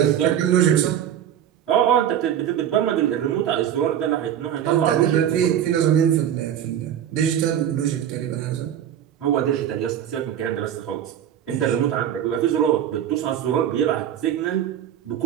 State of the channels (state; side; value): quieter; left; 10.1 dB